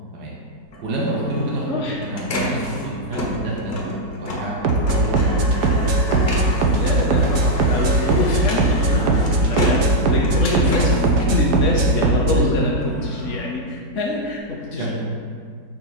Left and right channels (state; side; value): late; left; 5.0 ms